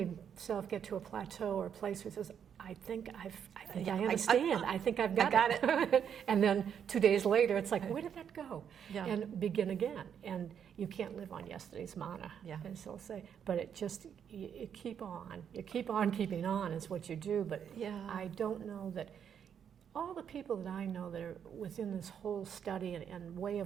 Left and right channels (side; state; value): left; quieter; 8.2 dB